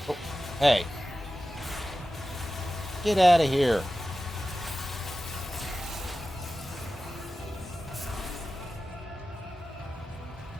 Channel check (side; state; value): both; normal; correlation 0.94